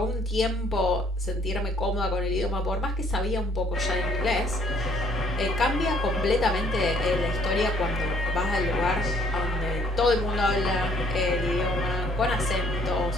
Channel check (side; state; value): both; normal; correlation 0.62